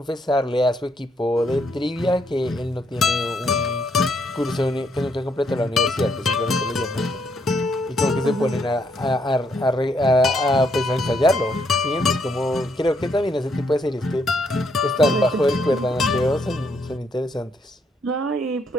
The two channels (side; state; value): both; normal; correlation 0.74